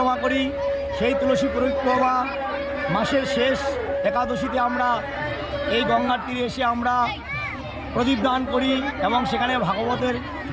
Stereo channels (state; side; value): identical; both; correlation 1.00